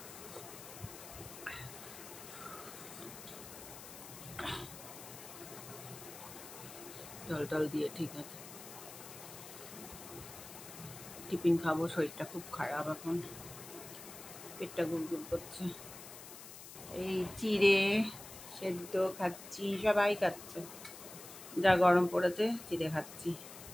জল টল দিয়ে ঠিক আছে, টিফিন খাবো। শরীরটা খুব খারাপ, এখন পেটটা গুড়গুড় করছে। এই চিড়ে সেদ্ধ খাচ্ছি, সবাই খাচ্ছে। যা গরম পড়েছে, চিড়ে খাচ্ছি।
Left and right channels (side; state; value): left; noise; hiss, 14 dB below the sound